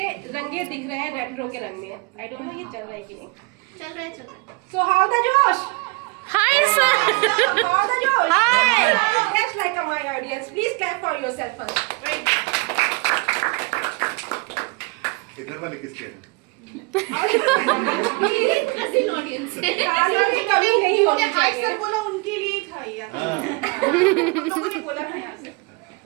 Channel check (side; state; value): left; quieter; 27.6 dB